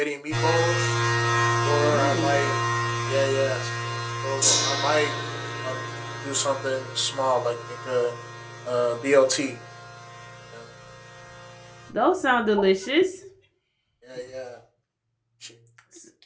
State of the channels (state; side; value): identical; both; correlation 1.00